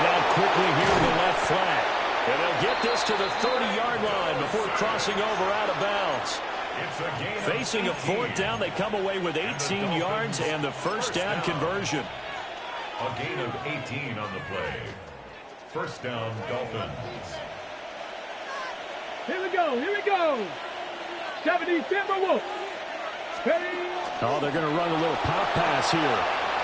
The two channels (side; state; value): both; identical; correlation 1.00